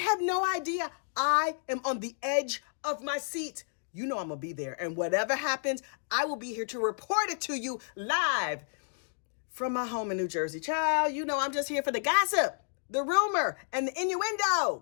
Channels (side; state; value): right; silent; digital silence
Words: no idea. I am on the edge of my seat. You know I'm going to be there. And whatever happens, I will be here to report it to you live from my home in New Jersey. Child, you know I'm just here for the gossip, the rumor, and the